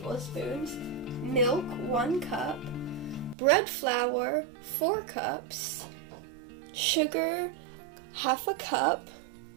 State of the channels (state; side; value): drops out; left; at 3.4 s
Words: milk, 1 cup, bread flour, 4 cups, sugar, half a cup,